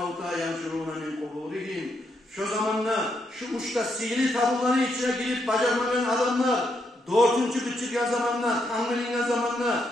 يَنْشُرُونَ مِنْ قُبُورِهِمْ Şu zamanla, şu uçta sihirli tabuların içine girip bacarmayan adamlar, dördüncü kıçırgan zamanla, tanrılingen zamanla,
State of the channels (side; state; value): both; normal; correlation 0.78